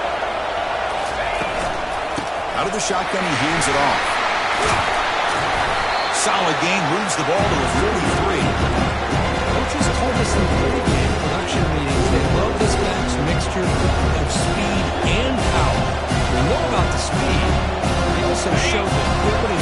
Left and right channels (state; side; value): identical; both; correlation 1.00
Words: Out of the shotgun, he hands it off. Solid gain, moves the ball to a 43. Coaches told us in pregame production meetings they love this back's mixture of speed and power. We know about the speed. They also showed the